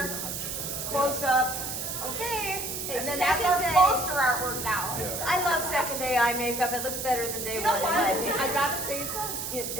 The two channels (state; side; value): noise; right; hiss, 4 dB below the sound